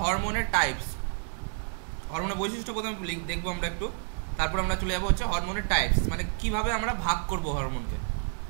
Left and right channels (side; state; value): left; silent; 58 dB below the other